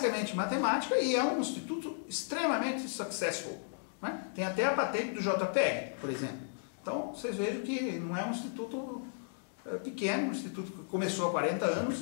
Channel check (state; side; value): silent; right; digital silence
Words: matemática e é um instituto extremamente successful. Né? Tem até a patente do JPEG, por exemplo. Então, vocês vejam que não é um instituto pequeno, um instituto que começou há 40